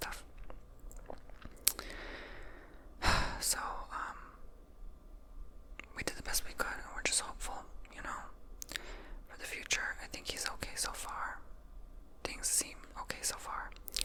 So, we did the best we could, and we're just hopeful, for the future. I think he's okay so far. Things seem okay so far.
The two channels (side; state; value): both; identical; correlation 1.00